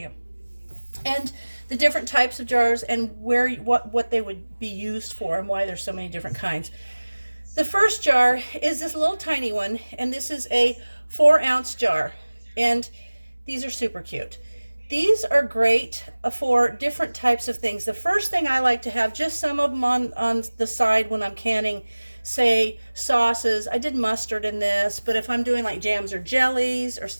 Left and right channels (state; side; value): inverted; both; correlation -1.00